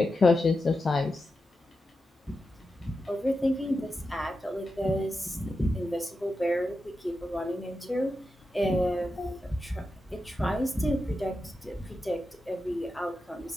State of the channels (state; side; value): normal; both; correlation 0.90